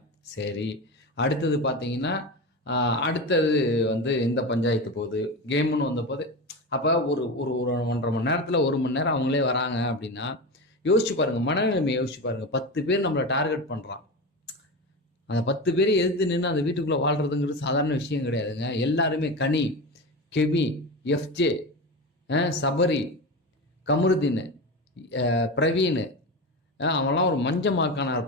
சரி, அடுத்தது பார்த்தீங்கன்னா அடுத்தது வந்து இந்த பஞ்சாயத்து போகுது, கேமுன்னு வந்த போது. அப்போ ஒரு ஒரு 1.5 மணி நேரத்தில் 1 மணி நேரம் அவங்களே வராங்க அப்படின்னா யோசிச்சு பாருங்க, மனநிலைமை யோசிச்சு பாருங்க. 10 பேர் நம்மளை டார்கெட் பண்ணுறான். அந்த 10 பேரை எதிர்த்து நின்று அந்த வீட்டுக்குள்ளே வாழ்றதுங்கிறது சாதாரண விஷயம் கிடையாதுங்க. எல்லாருமே கனி, கெபி, எஃப்ஜே, சபரி, கமருதீன், பிரவீன், அவன்லாம் ஒரு மஞ்சமாக்கானா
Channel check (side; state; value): both; normal; correlation 0.23